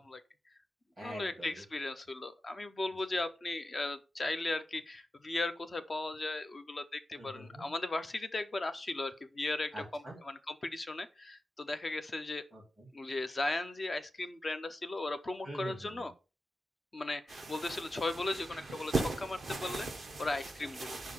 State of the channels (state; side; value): normal; both; correlation 0.92